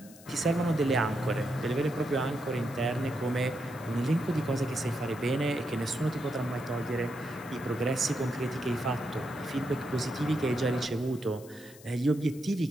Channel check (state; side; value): noise; left; hiss, 21 dB below the sound